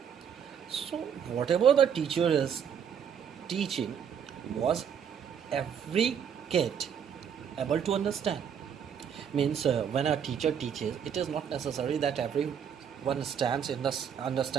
So, whatever the teacher is teaching was every kid able to understand. Means when a teacher teaches, it is not necessary that everyone understands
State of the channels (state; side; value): quieter; left; 8.0 dB